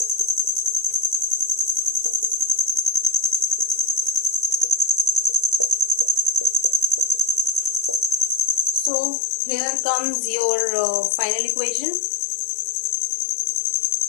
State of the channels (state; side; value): drops out; right; at 8.9 s